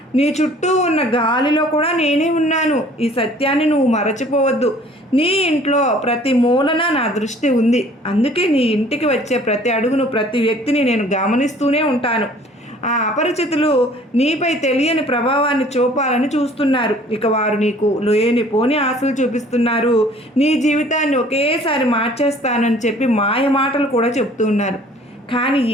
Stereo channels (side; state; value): both; normal; correlation 0.53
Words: నీ చుట్టూ ఉన్న గాలిలో కూడా నేనే ఉన్నాను. ఈ సత్యాన్ని నువ్వు మరచిపోవద్దు. నీ ఇంట్లో ప్రతి మూలన నా దృష్టి ఉంది. అందుకే నీ ఇంటికి వచ్చే ప్రతి అడుగును, ప్రతి వ్యక్తిని నేను గమనిస్తూనే ఉంటాను. ఆ అపరిచితులు నీపై తెలియని ప్రభావాన్ని చూపాలని చూస్తున్నారు. ఇక వారు నీకు లేనిపోని ఆశలు చూపిస్తున్నారు. నీ జీవితాన్ని ఒకేసారి మార్చేస్తానని చెప్పి మాయ మాటలు కూడా చెప్తున్నారు. కానీ